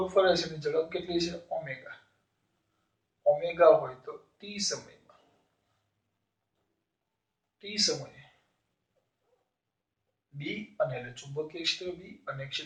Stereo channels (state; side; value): identical; both; correlation 1.00